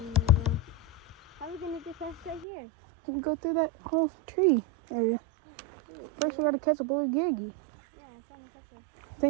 How are we gonna get past right here? You go through that whole tree area. First we gotta catch a blue giggy.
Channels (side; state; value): left; drops out; at 2.5 s